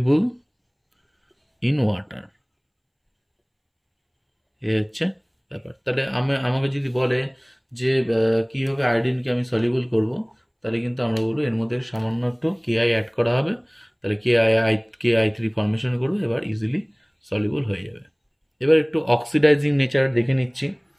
ইন ওয়াটার, এ হচ্ছে ব্যাপার। তাহলে আমাকে যদি বলে যে কীভাবে আয়োডিনকে আমি সলিউবল করব, তাহলে কিন্তু আমরা বলবো এর মধ্যে সামান্য একটু Ki অ্যাড করা হবে, তাহলে Ki3 ফর্মেশন করবে, এবার ইজিলি সলিউবল হয়ে যাবে। এবার একটু অক্সিডাইজিং নেচার দেখে নিচ্ছি।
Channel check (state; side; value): identical; both; correlation 1.00